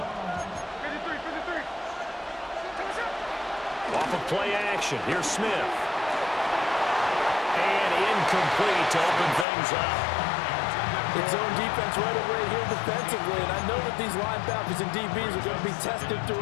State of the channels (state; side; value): drops out; right; at 9.5 s